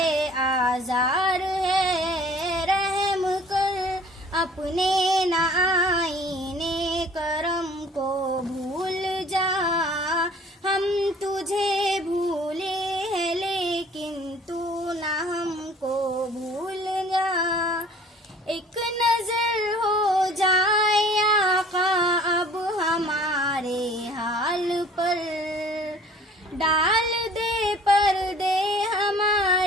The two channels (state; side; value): normal; both; correlation 0.51